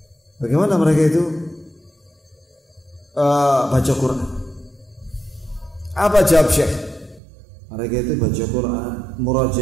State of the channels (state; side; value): drops out; left; at 7.2 s